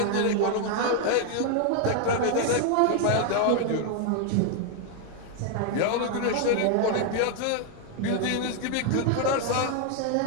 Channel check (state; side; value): different; both; correlation 0.00